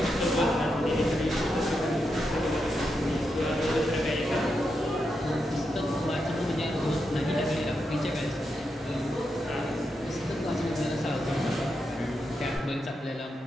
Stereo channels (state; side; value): normal; both; correlation 0.85